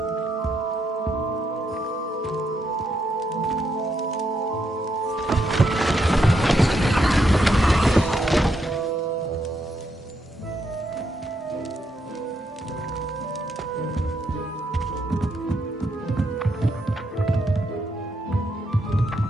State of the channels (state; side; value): normal; both; correlation 0.78